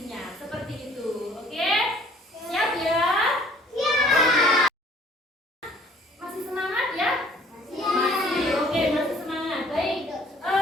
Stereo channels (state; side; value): normal; both; correlation 0.56